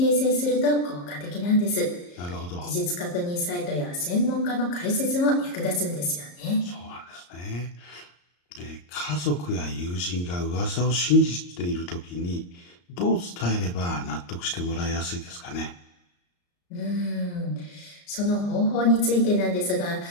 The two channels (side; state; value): right; late; 34 ms